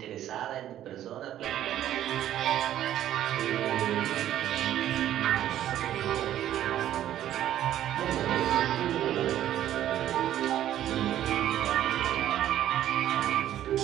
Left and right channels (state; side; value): quieter; left; 12.0 dB